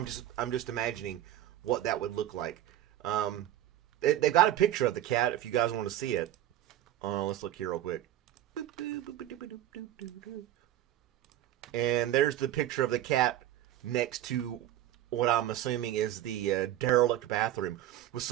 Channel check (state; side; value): quieter; left; 13.0 dB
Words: I'm just imagining what that would look like. They've got a picture of the cat if you guys want to see it. Let's look here real quick. And there's the picture of the cat next to what I'm assuming is the derelict bathroom with